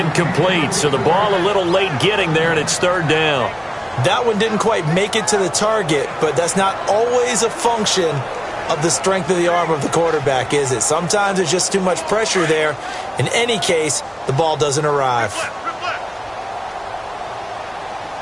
so the ball a little late getting there, and it's third down. That one didn't quite make it to the target, but that's not always a function of the strength of the arm of the quarterback, is it? Sometimes there's just too much pressure there. In any case, the ball doesn't arrive.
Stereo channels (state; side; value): identical; both; correlation 1.00